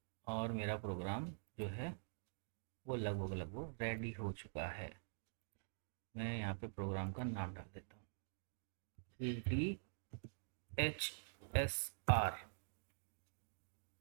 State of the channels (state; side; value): silent; left; digital silence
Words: और मेरा प्रोग्राम जो है वो लगभग लगभग रेडी हो चुका है। मैं यहाँ पे प्रोग्राम का नाम डाल देता हूँ, 3DHSR।